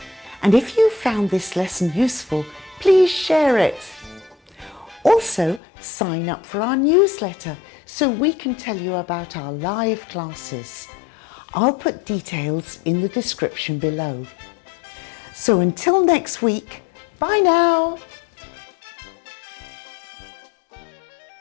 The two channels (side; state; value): right; drops out; at 5.6 s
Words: And if you found this lesson useful, please share it. Also, sign up for our newsletter so we can tell you about our live classes. I'll put details in the description below. So until next week, bye now.